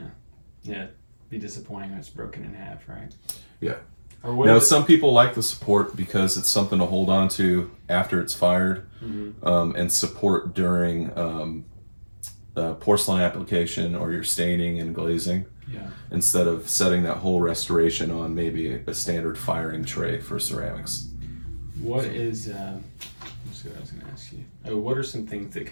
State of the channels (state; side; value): inverted; both; correlation -1.00